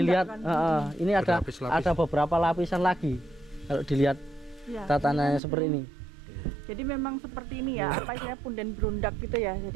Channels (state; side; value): drops out; left; at 5.4 s